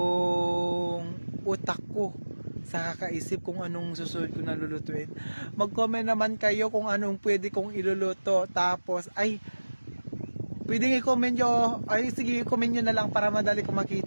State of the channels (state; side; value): inverted; both; correlation -1.00